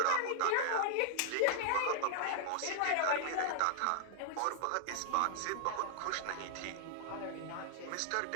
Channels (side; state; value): both; different; correlation -0.01